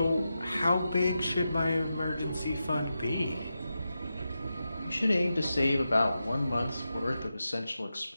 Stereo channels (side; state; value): both; inverted; correlation -0.90